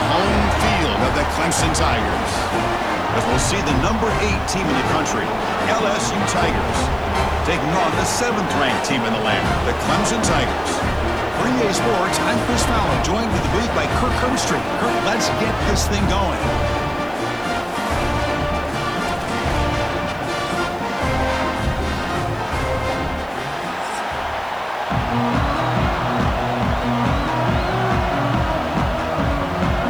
home field of the Clemson Tigers. As we'll see the number 8 team in the country, LSU Tigers, taking on the 7th-ranked team in the land, the Clemson Tigers. For EA Sports, I'm Chris Fowler, joined with the booth by Kirk Herbstreit. Kirk, let's get this thing going.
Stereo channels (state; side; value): noise; left; hiss, 28 dB below the sound